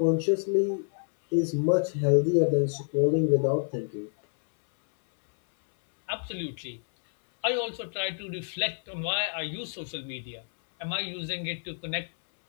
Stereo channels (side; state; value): right; silent; 59 dB below the other